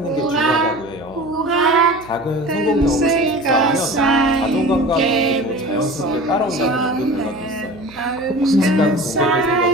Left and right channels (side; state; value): right; noise; hum, 21 dB below the sound